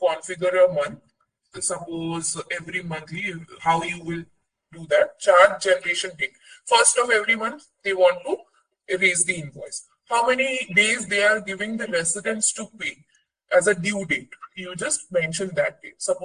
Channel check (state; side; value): identical; both; correlation 1.00